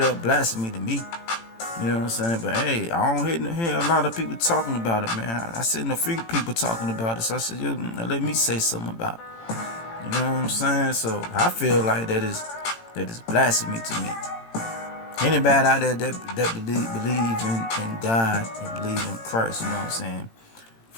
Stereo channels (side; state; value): right; late; 18 ms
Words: up blasphemy to me. You know what I'm saying? But hey, I don't hear a lot of people talking about it, man. I seen a few people talking about it, so I said, yo, let me say something about it. You know what I'm saying? So I feel like that is blasphemy to me. Anybody out there that believe in God and believe in Christ, you know what I'm saying?